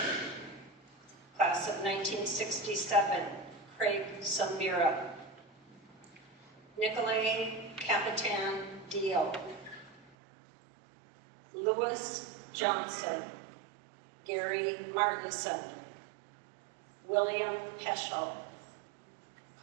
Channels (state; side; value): drops out; left; at 10.1 s